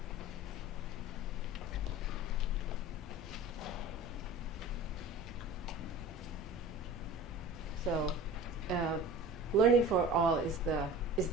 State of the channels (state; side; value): normal; both; correlation 0.39